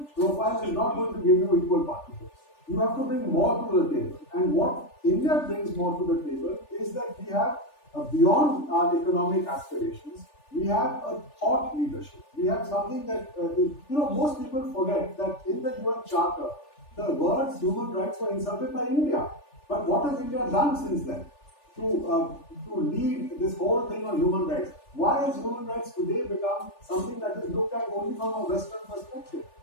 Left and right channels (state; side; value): late; right; 3.4 ms